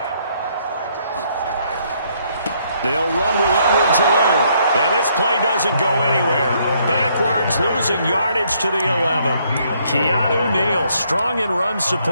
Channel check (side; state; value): both; inverted; correlation -0.69